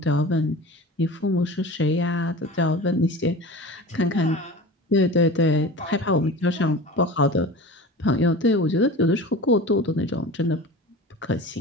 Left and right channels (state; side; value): normal; both; correlation 0.35